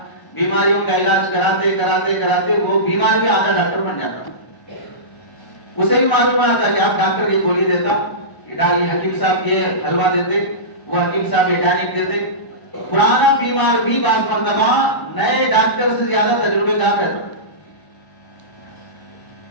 بیماریوں کا علاج کراتے کراتے کراتے وہ بیمار بھی آدھا ڈاکٹر بن جاتا. اسے بھی معلوم آتا کہ آپ ڈاکٹر یہ گولی دیتا، یہ حکیم صاحب یہ حلوہ دیتے، وہ حکیم صاحب یہ ٹانک دیتے. پرانا بیمار بھی بعض مرتبہ نئے ڈاکٹر سے زیادہ تجربے کار رہتا.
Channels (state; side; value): late; right; 1.0 ms